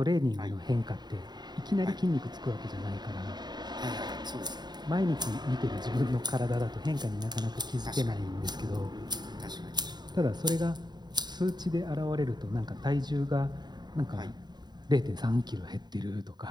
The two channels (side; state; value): left; late; 0.20 ms